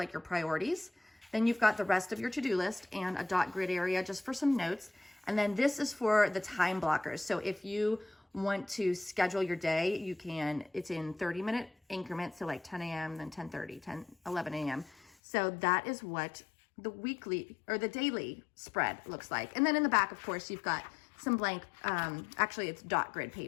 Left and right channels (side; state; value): right; drops out; at 15.1 s